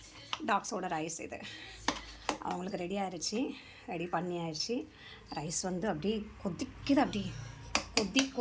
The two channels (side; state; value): both; identical; correlation 1.00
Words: டாக்ஸோட ரைஸ் இது அவங்களுக்கு ரெடி ஆயிடுச்சு. ரெடி பண்ணி ஆயிடுச்சு. ரைஸ் வந்து அப்படியே கொதிக்குது. அப்படியே